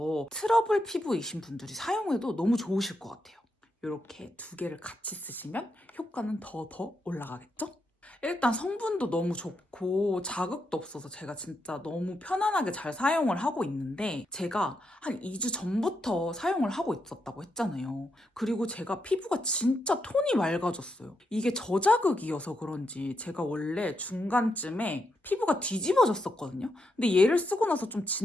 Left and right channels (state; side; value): normal; both; correlation 0.82